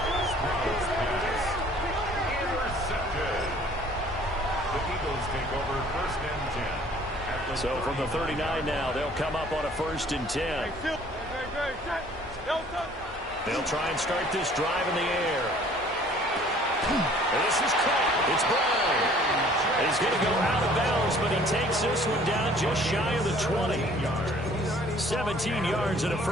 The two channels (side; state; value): both; normal; correlation 0.54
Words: Intercepted. The Eagles take over 1st and 10. So from the 39 now, they'll come up on a 1st and 10. They'll try and start this drive in the air. And this is caught. It's Brown. He's going to go out of bounds, but he takes this one down just shy of the 20. 17 yards and a